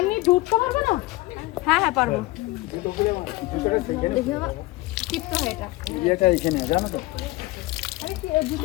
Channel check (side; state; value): right; quieter; 20.5 dB